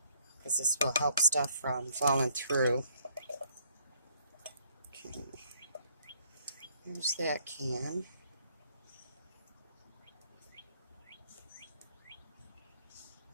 because this will help stuff from falling through. Okay, here's that can.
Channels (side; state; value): both; inverted; correlation -0.66